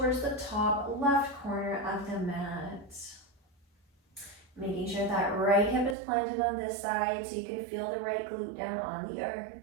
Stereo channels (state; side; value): drops out; left; at 6.0 s